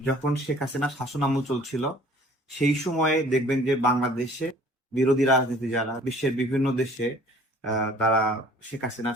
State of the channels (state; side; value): normal; both; correlation 0.52